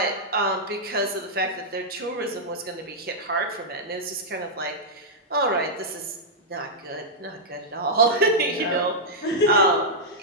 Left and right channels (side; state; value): both; normal; correlation -0.07